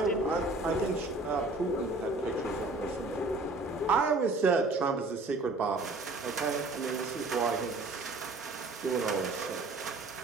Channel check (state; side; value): quieter; left; 3.1 dB